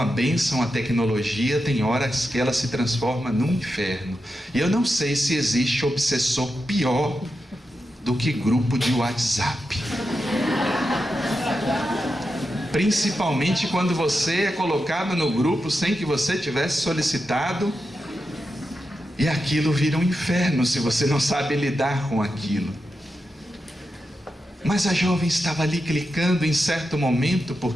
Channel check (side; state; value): both; normal; correlation 0.88